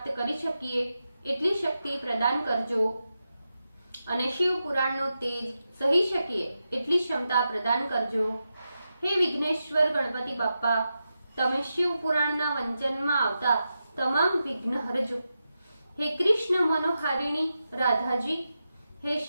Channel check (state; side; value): inverted; both; correlation -0.89